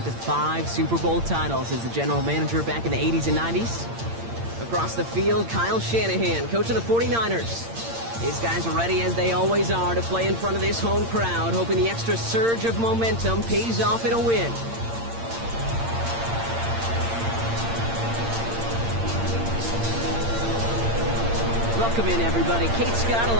to 5 Super Bowl titles as the general manager back in the 80s and 90s. Across the field, Kyle Shanahan, coach of the 49ers. These guys are ready, as they always are, to play in front of this home crowd, hoping the extra surge of momentum pays off in a win. Welcome in, everybody. Kate Scott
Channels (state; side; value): late; left; 8.7 ms